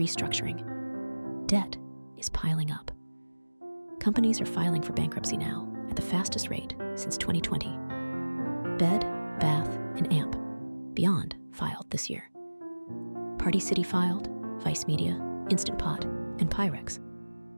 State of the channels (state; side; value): inverted; both; correlation -1.00